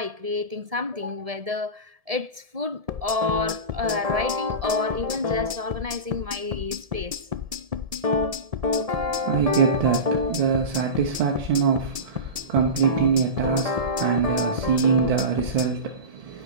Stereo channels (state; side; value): late; left; 1.7 ms